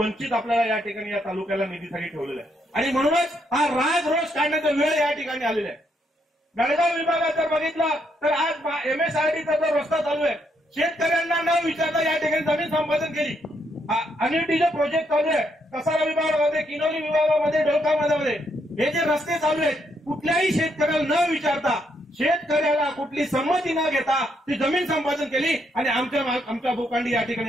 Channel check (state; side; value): normal; both; correlation 0.76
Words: आपल्याला या ठिकाणी या तालुक्याला निधीसाठी ठेवलेला आहे. आणि म्हणूनच हा राग रोष काढण्याचा वेळ या ठिकाणी आलेला आहे. बेळगाव विभागात जर बघितलं तर आज एमएसआरडीचा जो रस्ता चालू आहे, शेतकऱ्यांना न विचारता या ठिकाणी जमीन संपादन केली. अनिटीचे प्रोजेक्ट चालू आहे कसारा विभागामध्ये, किनोली विभागामध्ये, डोलकामध्ये हे जे रस्ते चालू आहेत कुठल्याही शेतकऱ्याला न विचारता, शेतकऱ्याला कुठली संमती न घेता ती जमीन संपादन केली आणि आमच्या भूखंडी या